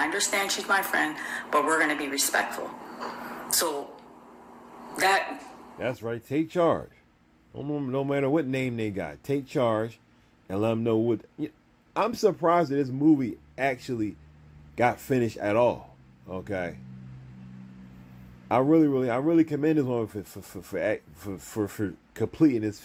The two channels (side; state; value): both; identical; correlation 1.00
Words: understand she's my friend, but we're going to be respectful." So that's right. Take charge. No matter what name they got, take charge and let them know what. I'm surprised that this movie actually got finished at all. Okay. I really commend this woman for completing this